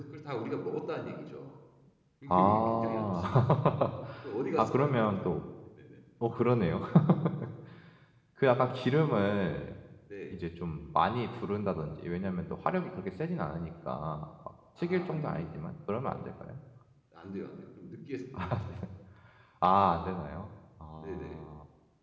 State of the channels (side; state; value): both; identical; correlation 1.00